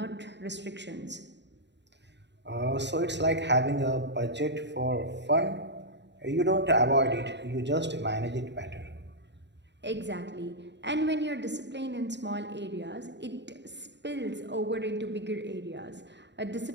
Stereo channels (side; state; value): left; late; 0.51 ms